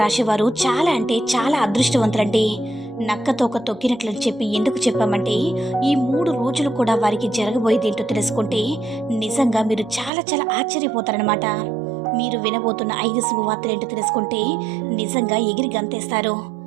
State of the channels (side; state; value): left; drops out; at 10.1 s